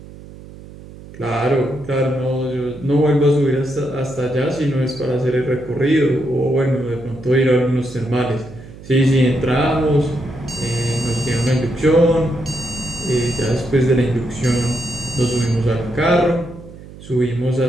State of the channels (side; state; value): right; noise; hum, 17 dB below the sound